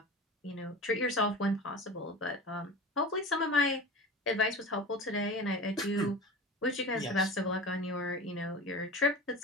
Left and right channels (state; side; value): normal; both; correlation 0.32